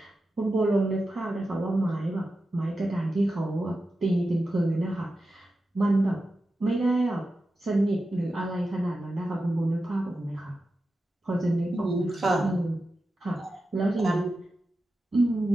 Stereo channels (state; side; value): normal; both; correlation 0.91